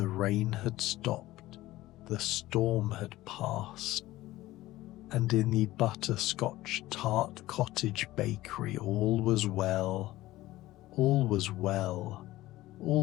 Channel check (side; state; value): right; quieter; 16.9 dB